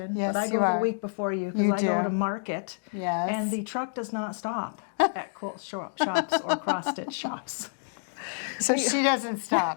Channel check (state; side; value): silent; right; digital silence